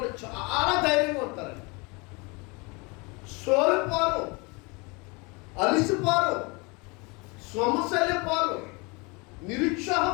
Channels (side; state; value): right; quieter; 28.7 dB